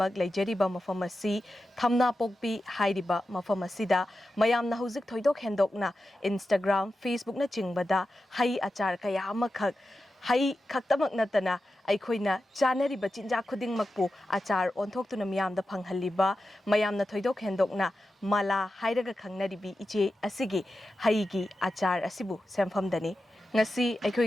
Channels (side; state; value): both; normal; correlation 0.91